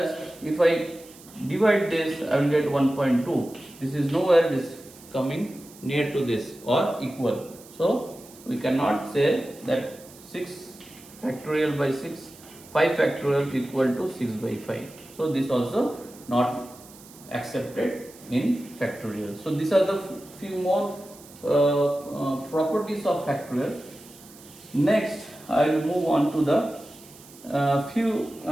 if I divide this, I will get 1.2. This is nowhere it is coming near to this or equal. So we cannot say that 6 factorial by 6, 5 factorial equal to 6 by 5. So this also not accepted in factorial. So these are the few more properties of factorial. Next, I will move on to the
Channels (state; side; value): noise; right; hiss, 21 dB below the sound